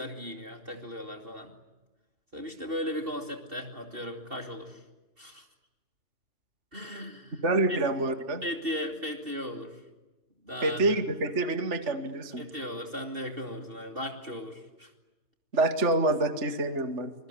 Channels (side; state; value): left; late; 2.7 ms